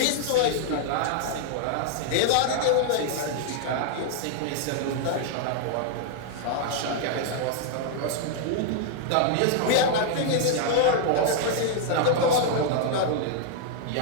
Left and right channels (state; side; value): different; both; correlation -0.01